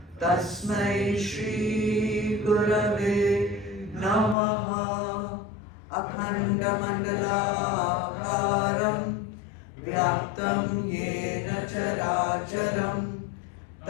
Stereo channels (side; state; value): right; drops out; at 4.4 s